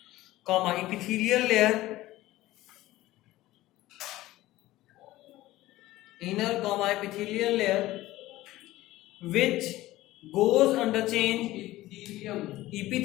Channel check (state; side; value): quieter; right; 16.8 dB